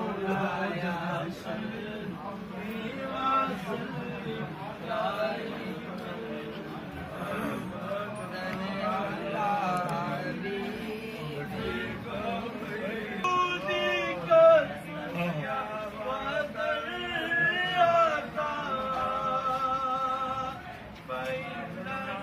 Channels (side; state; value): both; identical; correlation 1.00